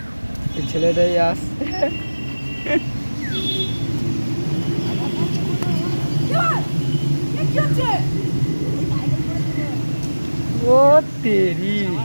এই ছেলেটাই আসছে। ও তেরি,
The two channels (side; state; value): both; inverted; correlation -1.00